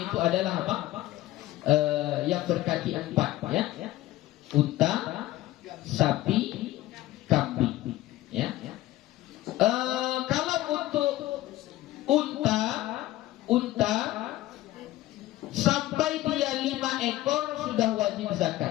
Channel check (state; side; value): quieter; right; 16.0 dB